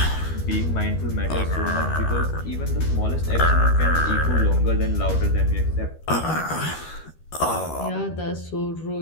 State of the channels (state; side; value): late; right; 13 ms